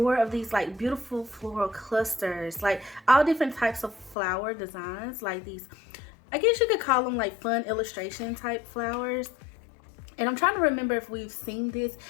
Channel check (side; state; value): right; drops out; at 4.2 s